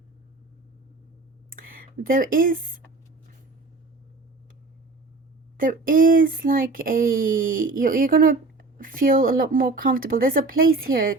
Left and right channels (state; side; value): quieter; left; 3.5 dB